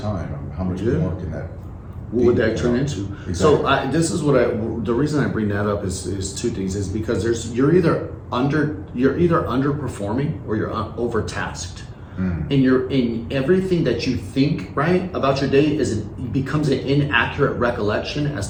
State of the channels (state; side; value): identical; both; correlation 1.00